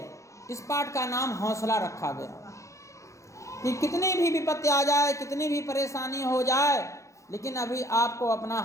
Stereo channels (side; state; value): right; late; 0.15 ms